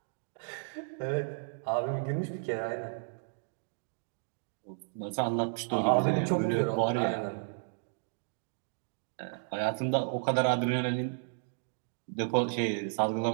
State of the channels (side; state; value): left; silent; digital silence